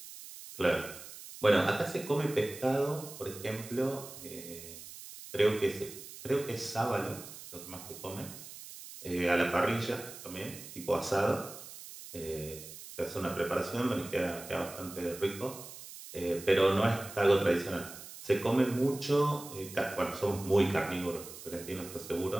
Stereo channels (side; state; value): right; noise; hiss, 14 dB below the sound